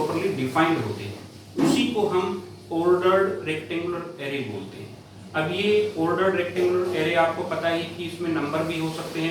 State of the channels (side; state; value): both; identical; correlation 1.00